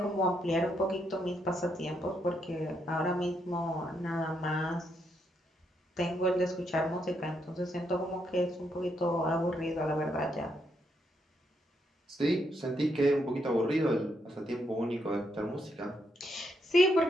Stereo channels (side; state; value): both; normal; correlation 0.78